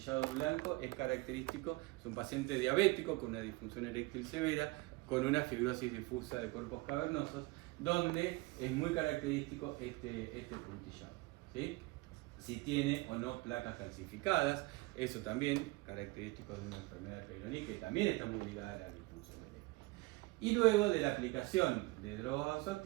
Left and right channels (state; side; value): quieter; left; 22.8 dB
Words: blanco es característico, es un paciente diabético con una disfunción eréctil severa, con una fibrosis difusa de cuerpos cavernosos, donde es muy característico este puntillado, ¿sí? Si tiene o no placas calcificadas, eso también característico de una enfermedad de Peyronie, que también está muy ligada a la disfunción eréctil. Y luego de la aplicación de drogas